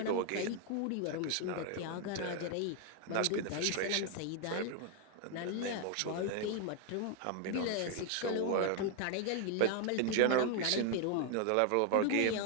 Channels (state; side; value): different; both; correlation 0.00